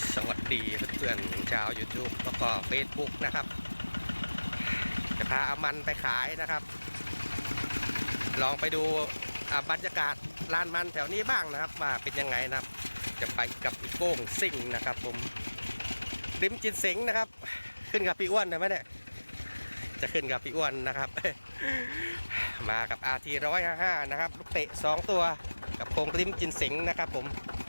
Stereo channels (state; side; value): inverted; both; correlation -1.00